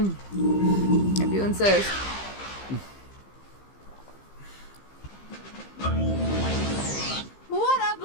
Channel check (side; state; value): right; late; 15 ms